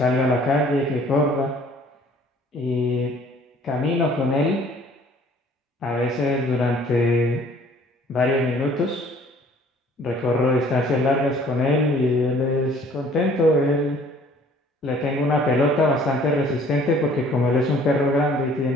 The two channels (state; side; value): normal; both; correlation 0.55